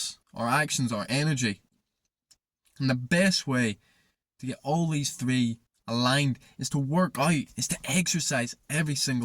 our actions, our energy. And the best way to get all these three aligned is to work out, is to exercise every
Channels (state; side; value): identical; both; correlation 1.00